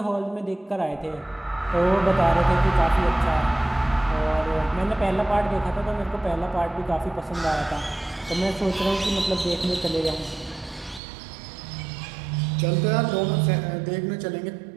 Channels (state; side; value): drops out; left; at 11.0 s